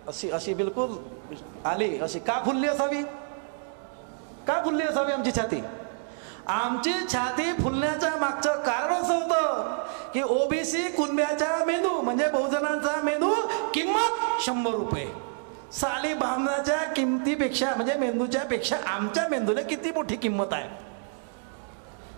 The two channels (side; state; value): left; silent; 60 dB below the other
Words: अशी अशी बिलकुल आली अशी. का फुलली असावी, का फुलली असावी आमची छाती? आमची छाती फुलण्याच्या मागचं कारण असं होतं की ओबीसी कुणब्याचा मेंदू म्हणजे बहुजनांचा मेंदू किंमत 100 रुपये. साली बामणाच्या किमतीपेक्षा म्हणजे मेंदूच्या पेक्षा आमच्या मेंदूला किती मोठी किंमत आहे.